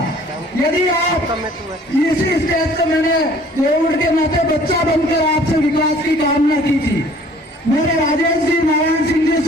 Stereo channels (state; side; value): normal; both; correlation 0.54